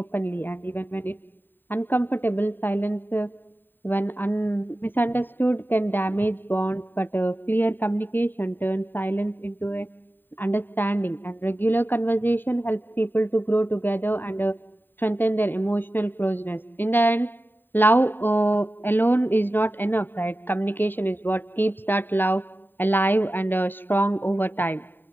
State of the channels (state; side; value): late; right; 0.093 ms